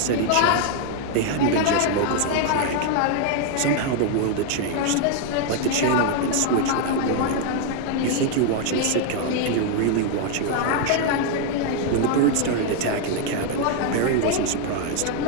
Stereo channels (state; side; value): different; both; correlation 0.00